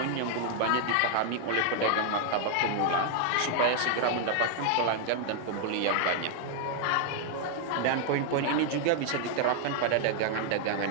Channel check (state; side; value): different; both; correlation 0.00